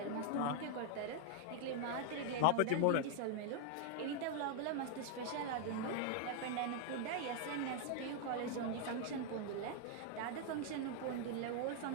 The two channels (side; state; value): both; different; correlation 0.00